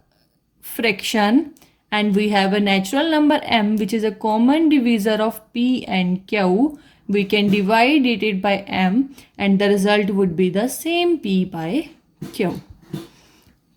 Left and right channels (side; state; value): both; identical; correlation 1.00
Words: fraction and we have a natural number m which is a common divisor of p and q, we can divide it by m and the result would be the same p by q.